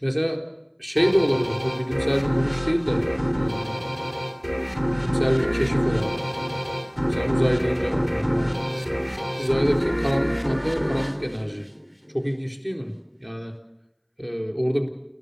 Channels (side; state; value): both; identical; correlation 1.00